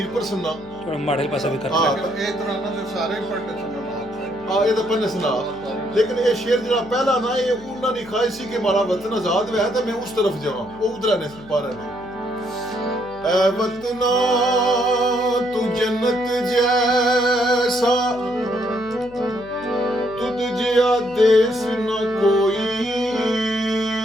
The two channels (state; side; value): noise; left; hum, 21 dB below the sound